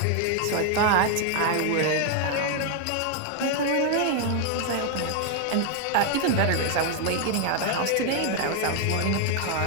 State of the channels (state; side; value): different; both; correlation 0.00